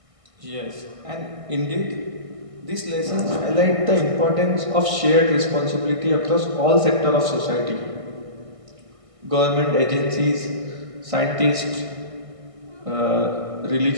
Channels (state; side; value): late; left; 1.6 ms